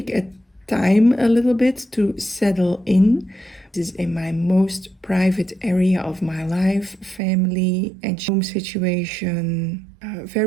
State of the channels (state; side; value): drops out; left; at 7.2 s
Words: a time a little bit to settle in. This is in my most private area of my life, family and home situation, a